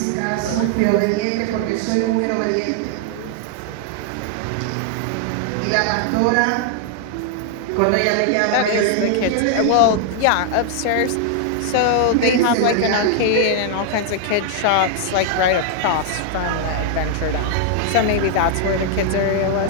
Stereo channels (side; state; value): both; different; correlation 0.00